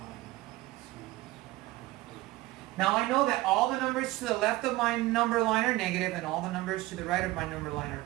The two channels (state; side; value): quieter; left; 18.5 dB